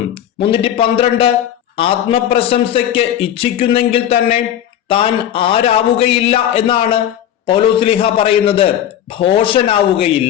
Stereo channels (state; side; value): quieter; right; 10.7 dB